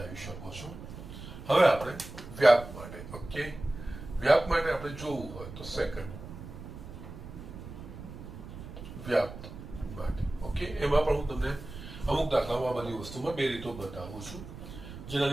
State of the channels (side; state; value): right; noise; rumble, 12 dB below the sound